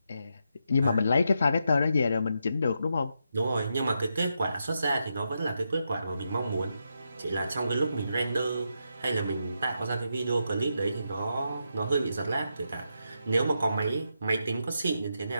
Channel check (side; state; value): both; inverted; correlation -0.83